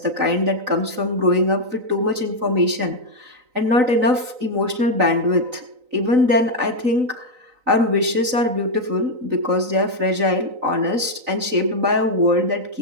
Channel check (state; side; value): late; left; 3.9 ms